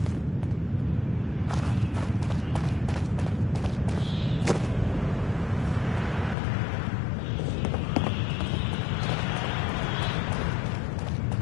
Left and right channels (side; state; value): right; drops out; at 6.4 s